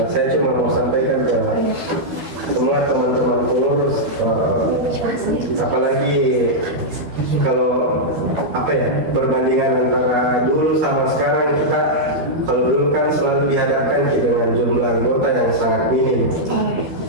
saya cuma mau sampaikan ke semua teman-teman pengurus, apalagi kalau perbandingan antara dulu sama sekarang, kita kalau dulu kan selalu dihadapkan dengan jumlah anggota yang sangat minim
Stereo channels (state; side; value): late; left; 13 ms